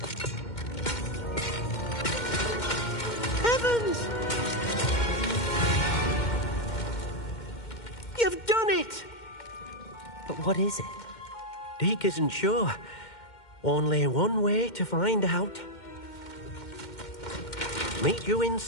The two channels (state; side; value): late; right; 2.1 ms